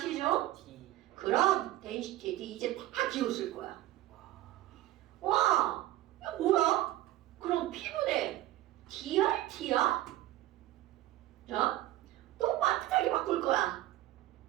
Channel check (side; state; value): left; quieter; 15.3 dB